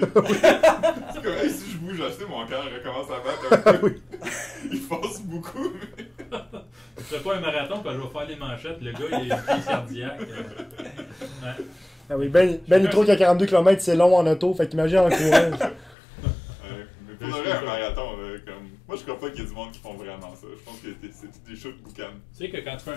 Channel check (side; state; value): right; drops out; at 16.0 s